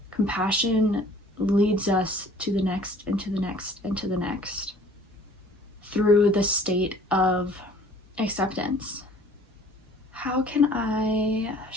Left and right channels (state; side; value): normal; both; correlation 0.52